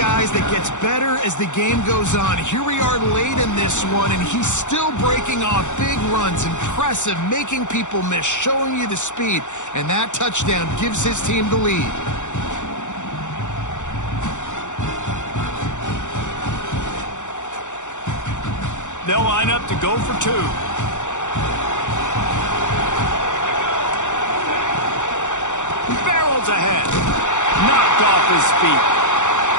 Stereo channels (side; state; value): right; late; 0.85 ms